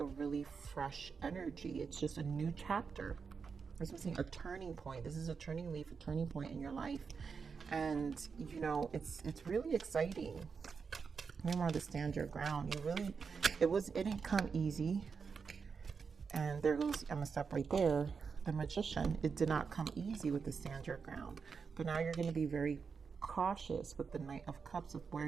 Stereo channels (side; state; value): left; quieter; 5.6 dB